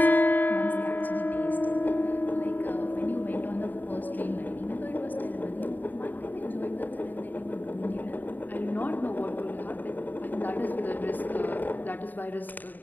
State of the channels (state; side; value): late; right; 0.088 ms